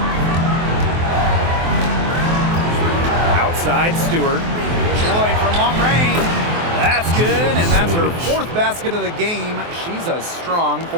Outside Stewart. Floyd from long range. That's good, and that's her fourth basket of the game. She's a strong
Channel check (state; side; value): late; left; 24 ms